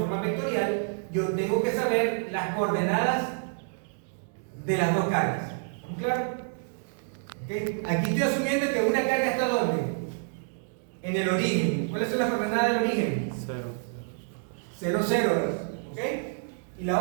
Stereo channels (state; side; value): silent; left; digital silence